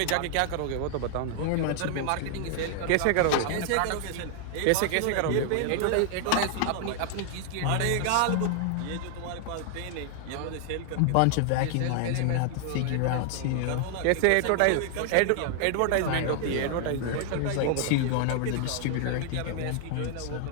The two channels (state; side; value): different; both; correlation 0.00